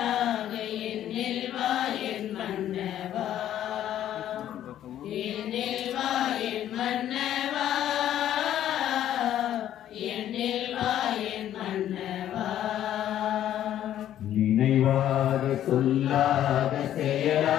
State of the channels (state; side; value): quieter; right; 11.5 dB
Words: என்னில் வா என் மன்னவா, என்னில் வா என் மன்னவா, என்னில் வா என் மன்னவா. நினைவாக சொல்லாத